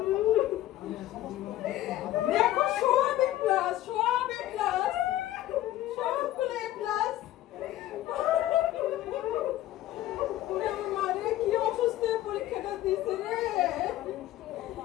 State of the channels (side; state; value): right; quieter; 14.4 dB